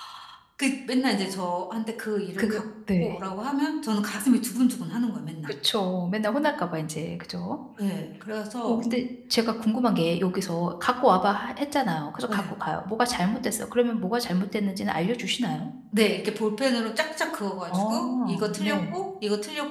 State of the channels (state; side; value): identical; both; correlation 1.00